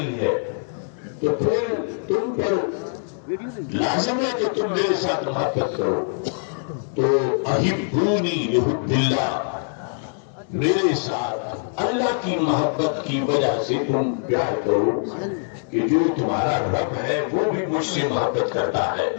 ہے، تو پھر تم پر لازم ہے کہ تم میرے ساتھ محبت کرو۔ تو احبونی لحب اللہ، میرے ساتھ اللہ کی محبت کی وجہ سے تم پیار کرو کہ جو تمہارا رب ہے وہ بھی مجھ سے محبت کرتا ہے۔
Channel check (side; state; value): right; silent; digital silence